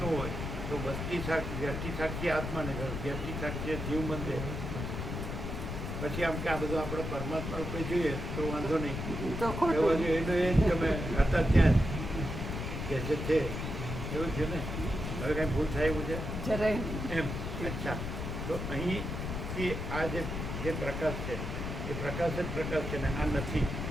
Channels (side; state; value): left; noise; rumble, 4 dB below the sound